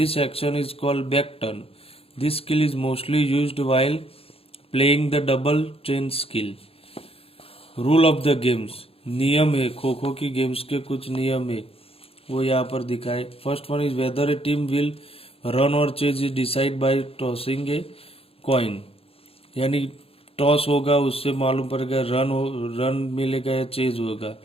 action is called back turn. This skill is mostly used while playing the double chain skill. Rule of the games, नियम है खो खो की games के कुछ नियम है वो यहाँ पर दिखाए. First one is whether a team will run or chase is decide by tossing a coin. यानी टॉस होगा उससे मालूम पड़ेगा रन मिलेगा या चेज होगा.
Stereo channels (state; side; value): late; right; 0.28 ms